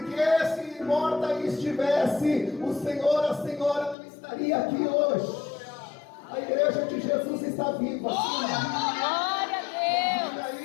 se morta estivesse, o Senhor, a Senhora não estaria aqui hoje. A igreja de Jesus está viva. Glória a Deus. Vida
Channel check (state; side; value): drops out; right; at 4.0 s